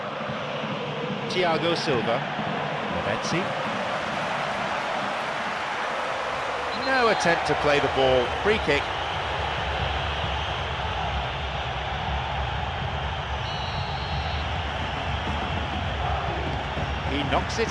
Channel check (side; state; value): both; identical; correlation 1.00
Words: Thiago Silva. Lavezzi. No attempt to play the ball. Free kick. He knocks it